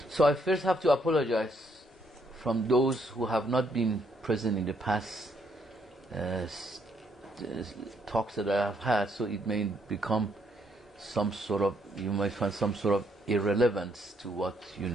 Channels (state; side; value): normal; both; correlation 0.71